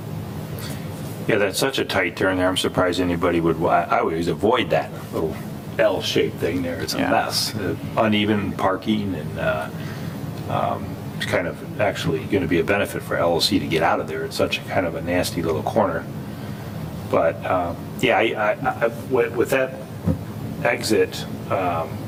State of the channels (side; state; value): both; identical; correlation 1.00